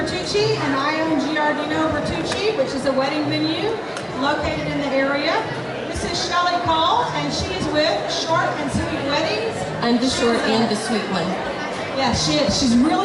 and I own Georgetown Bertucci, which is a wedding venue located in the area. This is Shelly Cole, and she is with Short and Sweet Weddings. I'm the short and the sweet one. Yeah, she is. She's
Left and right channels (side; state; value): both; identical; correlation 1.00